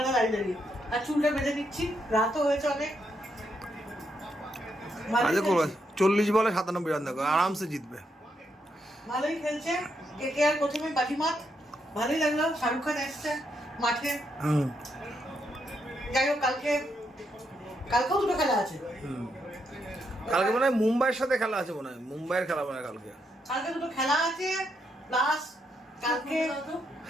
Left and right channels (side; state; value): both; normal; correlation 0.79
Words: দাঁড়িয়ে দাঁড়িয়ে। আর চুলটা বেঁধে নিচ্ছি, রাতও হয়েছে অনেক। আজকে করবে 40 বলে 97 রান, দেখো আরামসে জিতবে। ভালোই খেলছে। কে আর প্রথমে বাজিমাত, ভালোই লাগলো। শাহরুখ খান এসছে মাঠে। যাই হোক, কালকেও দুটো খেলা আছে। কালকে মনে হয় মুম্বাইয়ের সাথে খেলা আছে, মনে হয় মুম্বাইয়ের খেলা মনে হয় কালকে। কালকে দুটো খেলা আছে, প্লাস